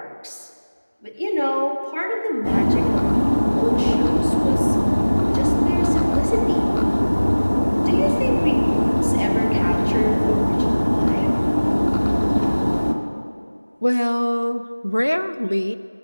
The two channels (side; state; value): both; inverted; correlation -1.00